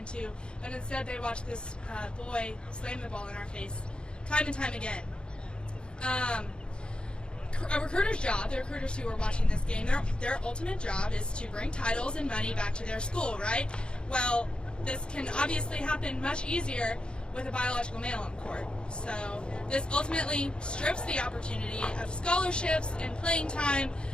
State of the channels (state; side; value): late; right; 0.053 ms